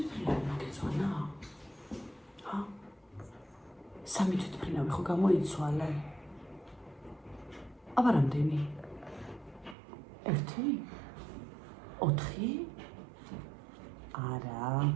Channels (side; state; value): left; drops out; at 9.8 s